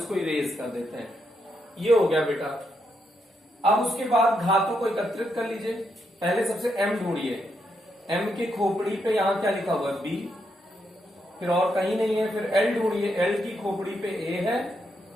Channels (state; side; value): normal; both; correlation 0.80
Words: इरेज कर देते हैं। ये हो गया बेटा। अब उसके बाद घातों को एकत्रित कर लीजिए। पहले सबसे M ढूंढिए, M की खोपड़ी पे यहां क्या लिखा हुआ है, B, फिर और कहीं नहीं है। फिर L ढूंढिए, L की खोपड़ी पे A है,